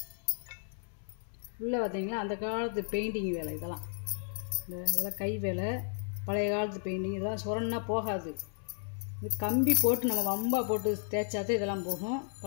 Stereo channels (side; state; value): right; silent; 55 dB below the other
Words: உள்ளே பார்த்தீங்கன்னா அந்த காலத்து பெயிண்டிங் வேலை இதெல்லாம். இதெல்லாம் கை வேலை, பழைய காலத்து பெயிண்டிங். இதெல்லாம் சுரன்னா போகாது. இது கம்பி போட்டு நம்ம வம்பா போட்டு தேய்ச்சாதான் இதெல்லாம் போகும்.